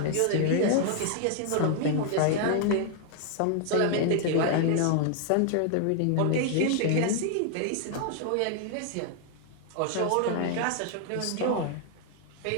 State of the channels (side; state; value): both; different; correlation 0.00